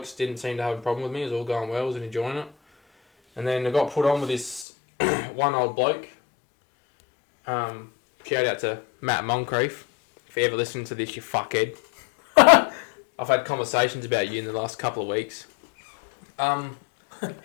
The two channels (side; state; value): right; drops out; at 4.7 s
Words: didn't seem to have a problem with me. It was all going well. I was enjoying it. And then I got put on with this one old bloke. Shout out to Matt Moncrief. If you ever listen to this, you fuckhead. I've had conversations about you in the last couple of weeks.